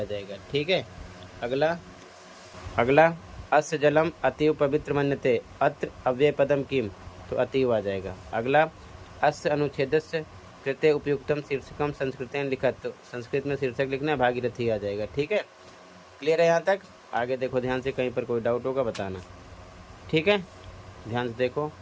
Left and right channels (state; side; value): identical; both; correlation 1.00